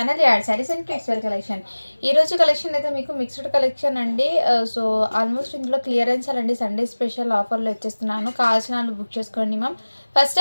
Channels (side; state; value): both; inverted; correlation -1.00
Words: ad saris and kids wear collection. ఈ రోజు collection అయితే మీకు మిక్స్డ్ కలెక్షన్ అండి. సో ఆల్మోస్ట్ ఇందులో క్లియరెన్స్ అండి, సండే స్పెషల్ ఆఫర్లో వచ్చేస్తున్నాను. కావాల్సిన వాళ్ళు బుక్ చేసుకోండి మ్యామ్. ఫస్ట్